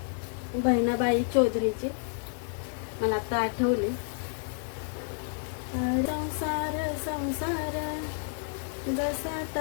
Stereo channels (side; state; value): right; silent; 58 dB below the other